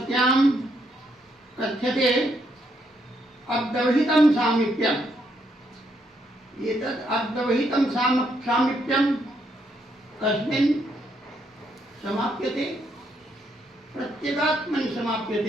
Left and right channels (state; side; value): normal; both; correlation 0.75